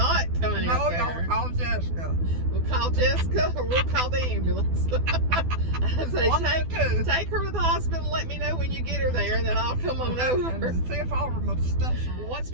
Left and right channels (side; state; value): left; late; 12 ms